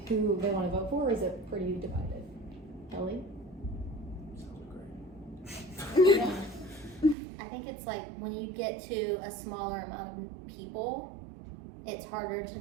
who they want to vote for, or is it pretty divided? Kelly? Sounds great. I think it's like when you get to a smaller amount of people, it's harder to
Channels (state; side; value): drops out; left; at 7.2 s